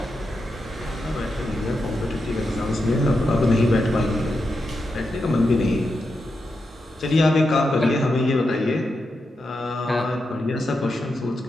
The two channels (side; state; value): both; normal; correlation 0.87